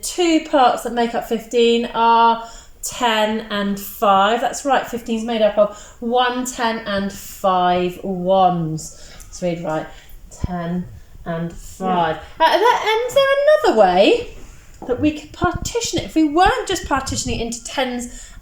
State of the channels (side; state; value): both; identical; correlation 1.00